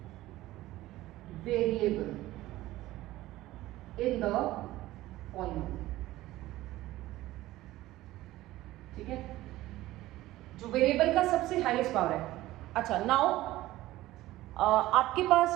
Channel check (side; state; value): left; quieter; 16.5 dB